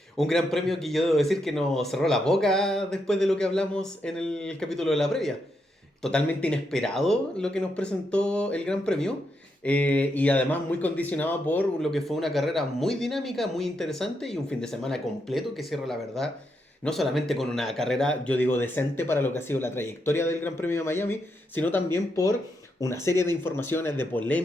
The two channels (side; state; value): both; normal; correlation 0.81